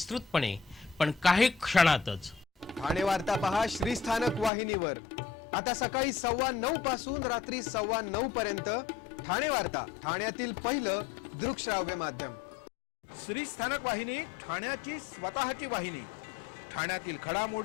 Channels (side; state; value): right; drops out; at 4.5 s